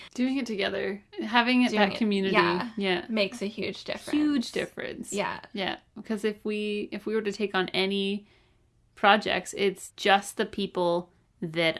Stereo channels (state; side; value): identical; both; correlation 1.00